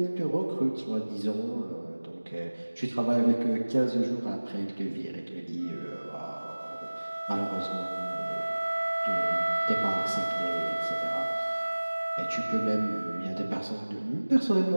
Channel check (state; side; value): inverted; both; correlation -1.00